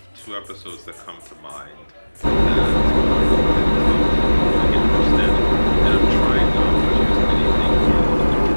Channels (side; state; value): both; inverted; correlation -1.00